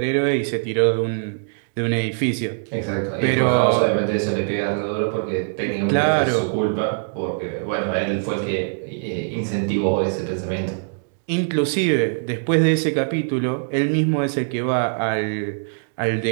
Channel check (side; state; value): left; silent; digital silence